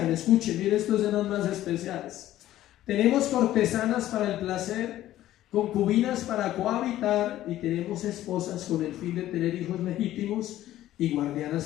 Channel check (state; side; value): quieter; right; 13.8 dB